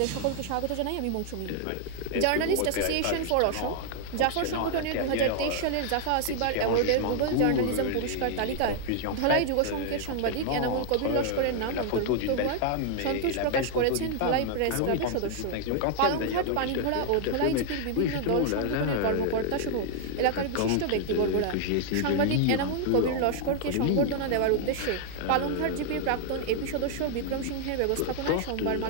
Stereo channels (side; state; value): both; different; correlation 0.00